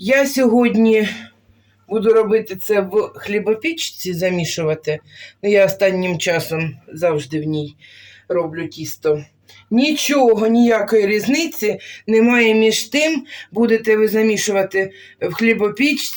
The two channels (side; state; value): both; identical; correlation 1.00